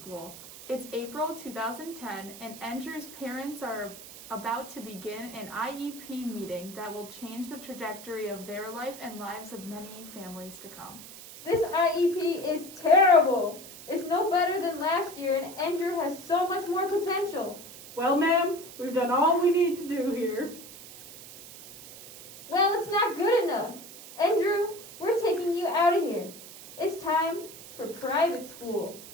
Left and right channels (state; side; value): noise; right; hiss, 15 dB below the sound